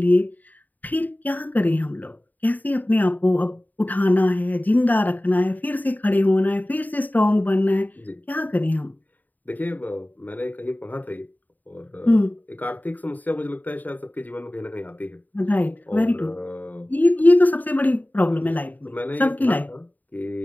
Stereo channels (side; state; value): right; late; 0.083 ms